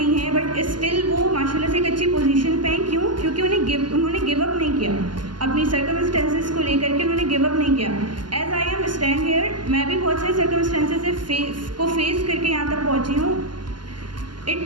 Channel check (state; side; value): late; left; 0.71 ms